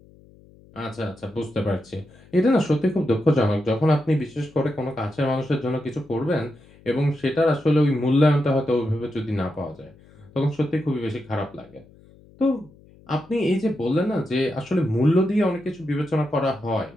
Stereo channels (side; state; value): left; noise; hum, 26 dB below the sound